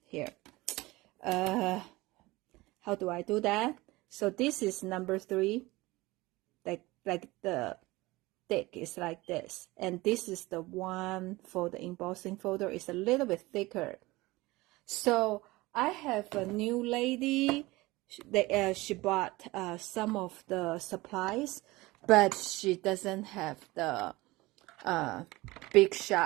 here. How do I do that? So this is number 3, like the thick is like this, and this is the one for the embossing folder, is a little bit thicker. So I have a new lady she bought some of the supplies, but she doesn't have the big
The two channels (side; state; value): left; quieter; 20.7 dB